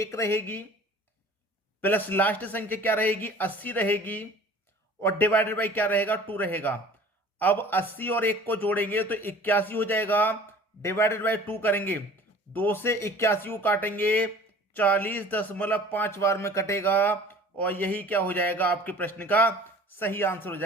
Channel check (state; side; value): normal; both; correlation 0.46